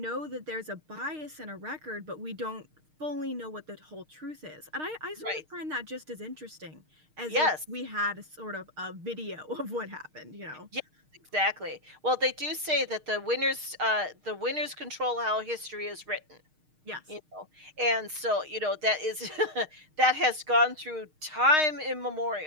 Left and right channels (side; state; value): left; late; 6.5 ms